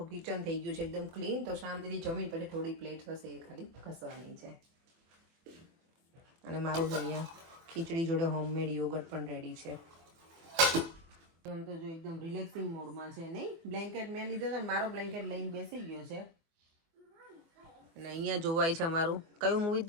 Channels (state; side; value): late; left; 24 ms